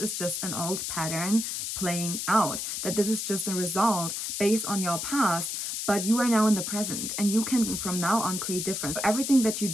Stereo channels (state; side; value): noise; left; hiss, 3 dB below the sound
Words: just an old pattern playing out, that this is just a result based on your past, but you are now in the present and you can from now on create difference. So everything that you